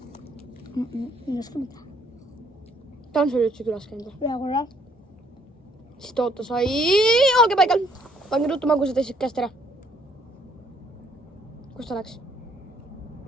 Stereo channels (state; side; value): normal; both; correlation 0.65